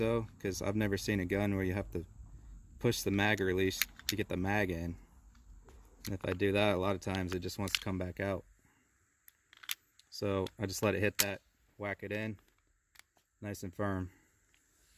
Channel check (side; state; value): both; identical; correlation 1.00